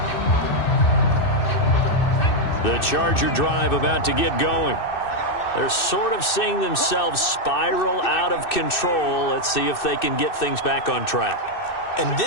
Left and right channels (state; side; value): late; right; 2.6 ms